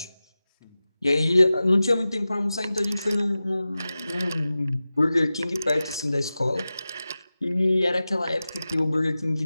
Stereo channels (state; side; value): inverted; both; correlation -0.95